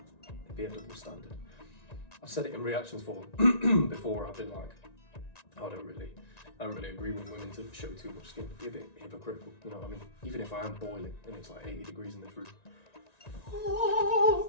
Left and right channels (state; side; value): late; right; 1.9 ms